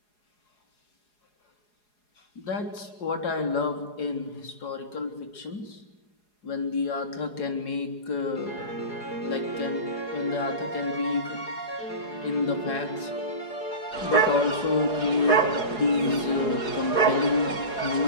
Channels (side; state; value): right; late; 4.8 ms